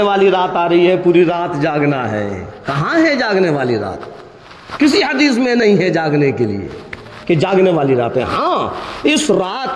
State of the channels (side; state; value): both; identical; correlation 1.00